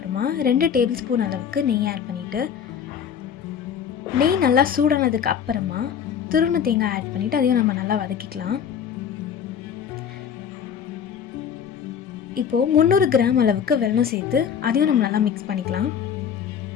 2 டேபிள் ஸ்பூன் அளவுக்கு நெய் ஆட் பண்ணிவிட்டு, நெய் நல்லா சூடானதுக்கு அப்புறமா துருவின தேங்காய் ஆட் பண்ணிவிட்டு அதையும் நம்ம நல்லா வதக்கிக்கலாம். இப்போது 300 கிராம் அளவுக்கு வெல்லம் சேர்த்து அதையும் நம்ம நல்லா மிக்ஸ் பண்ணிக்கலாம்.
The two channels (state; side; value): quieter; right; 8.0 dB